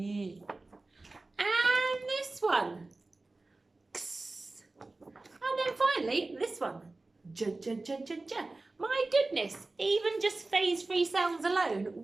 And this one. Ks. And then finally, this one. J, j, j, j, j. My goodness, even just phase 3 sounds alone,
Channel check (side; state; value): left; quieter; 3.2 dB